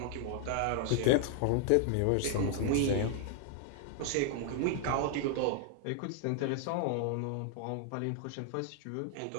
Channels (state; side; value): different; both; correlation 0.00